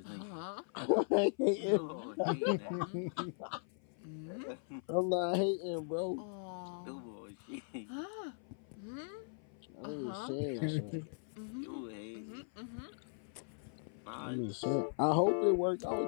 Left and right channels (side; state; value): right; silent; 52 dB below the other